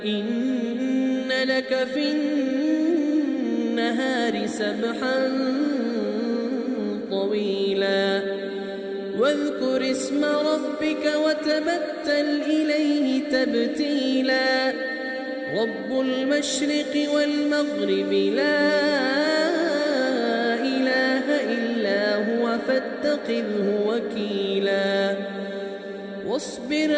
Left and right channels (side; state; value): both; identical; correlation 1.00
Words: إن لك في النهار سبحا طويلا واذكر اسم ربك وتبتل إليه تبتيلا رب المشرق والمغرب لا إله إلا هو فاتخذه وكيلا واصبر